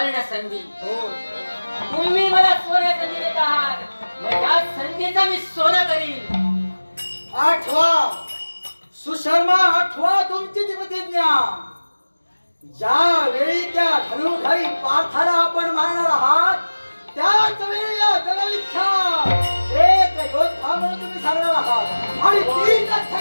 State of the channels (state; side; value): inverted; both; correlation -1.00